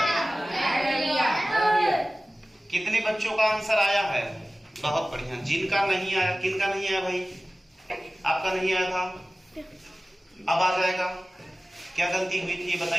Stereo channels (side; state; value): both; normal; correlation 0.97